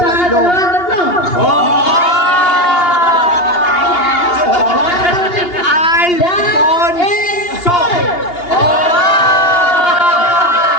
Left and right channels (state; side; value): late; right; 2.8 ms